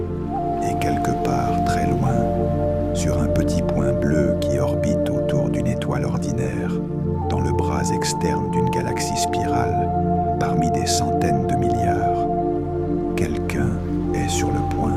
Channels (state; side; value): identical; both; correlation 1.00